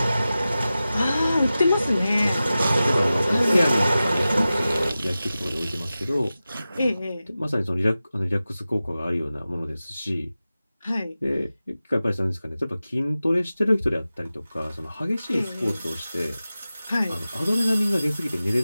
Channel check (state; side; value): inverted; both; correlation -0.95